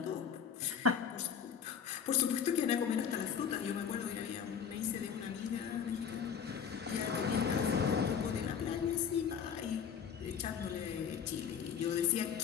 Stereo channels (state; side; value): quieter; right; 7.4 dB